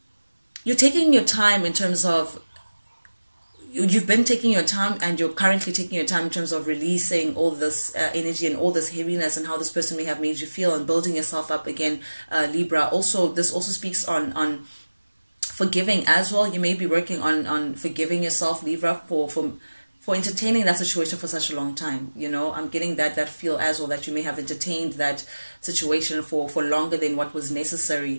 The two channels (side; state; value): both; inverted; correlation -1.00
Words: you're taking your time in terms of you've been taking your time and you're currently taking your time in terms of releasing all this energy and all this heaviness and how this person may have made you feel and building yourself up again, Libra. Also, this also speaks on forgiving as well. You may be working on forgiving yourself, Libra, for entertaining that situation for such a long time. You know, I'm getting that feel as well, that you may have entertained that situation for longer than what was